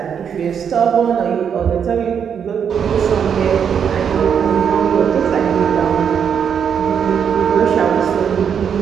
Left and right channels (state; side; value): quieter; left; 7.6 dB